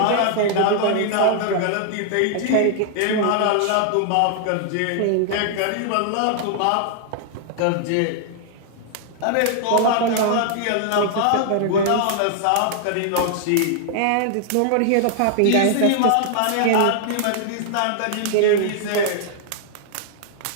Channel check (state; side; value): different; both; correlation -0.01